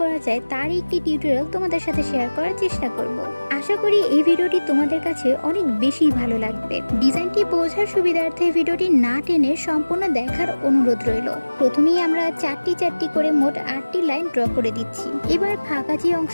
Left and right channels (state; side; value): inverted; both; correlation -1.00